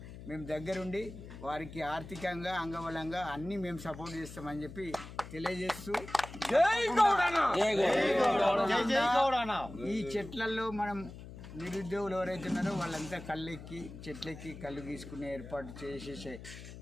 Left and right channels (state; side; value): noise; left; hum, 13 dB below the sound